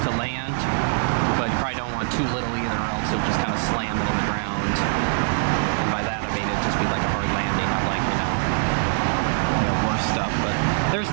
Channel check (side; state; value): left; silent; 61 dB below the other